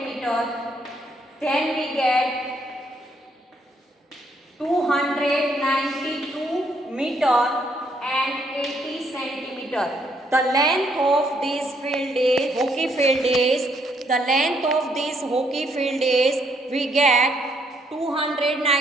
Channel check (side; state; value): both; normal; correlation 0.71